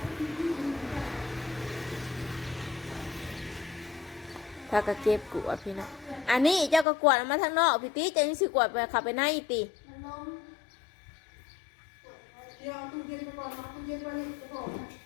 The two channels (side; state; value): right; drops out; at 6.9 s